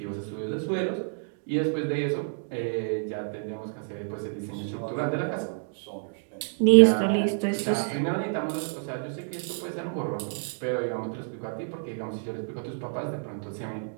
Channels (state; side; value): silent; left; digital silence